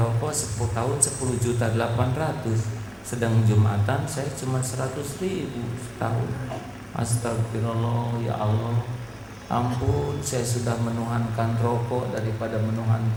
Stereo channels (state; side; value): identical; both; correlation 1.00